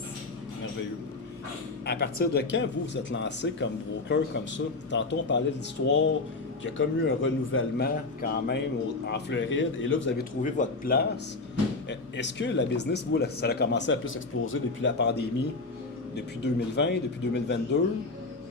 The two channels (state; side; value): quieter; right; 3.5 dB